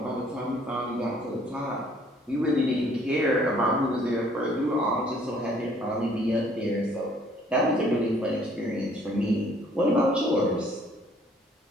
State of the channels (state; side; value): normal; both; correlation 0.60